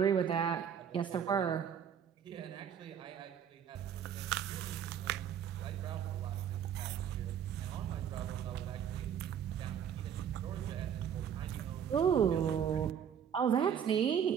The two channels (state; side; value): quieter; left; 8.5 dB